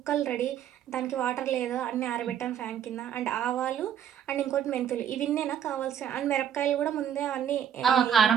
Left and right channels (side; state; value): left; quieter; 9.3 dB